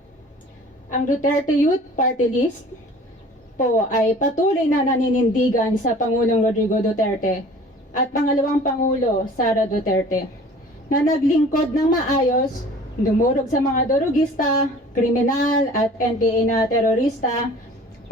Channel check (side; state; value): both; normal; correlation 0.47